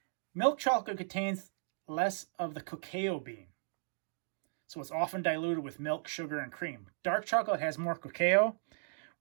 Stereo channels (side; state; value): left; silent; digital silence